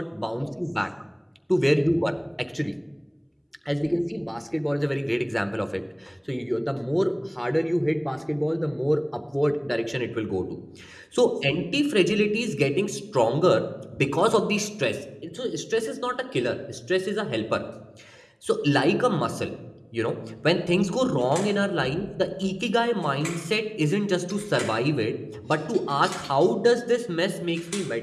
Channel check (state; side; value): identical; both; correlation 1.00